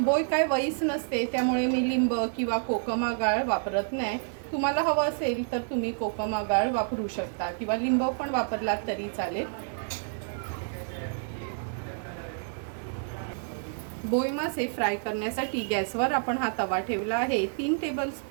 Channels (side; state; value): left; silent; 59 dB below the other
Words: काय वईस नसते, त्यामुळे मी लिंब किंवा कोकम आगाळ वापरत नाही। तुम्हाला हवं असेल तर तुम्ही कोकम आगाळ वापरू शकता किंवा लिंब पण वापरलात तरी चालेल। बोई मासे फ्राय करण्यासाठी गॅसवर आपण हा तवा ठेवला आहे। 3